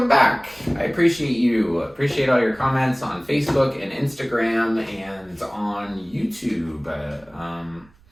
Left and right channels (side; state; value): right; noise; rumble, 30 dB below the sound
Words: back. I appreciate you. Appreciate all your comments on Facebook and Instagram and on YouTube.